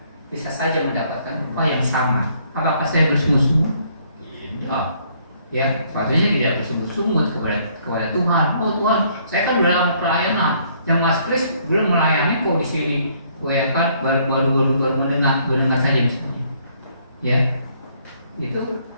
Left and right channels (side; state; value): both; inverted; correlation -0.66